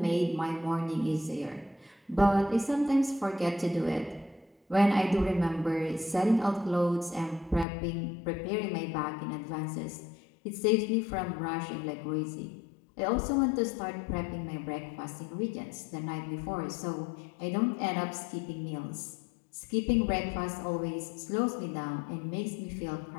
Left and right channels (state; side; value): drops out; right; at 7.7 s